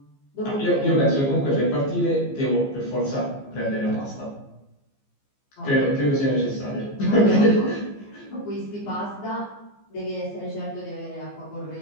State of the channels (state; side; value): late; right; 15 ms